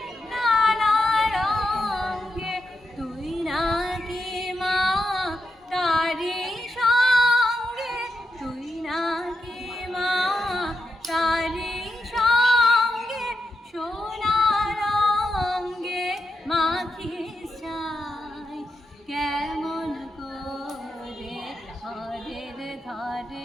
নানা রঙ্গে। তুই নাকি মা তারি সঙ্গে, তুই নাকি মা তারি সঙ্গে সোনা রঙ্গে মাখিস চাই, কেমন করে ঘরের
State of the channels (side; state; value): both; normal; correlation 0.86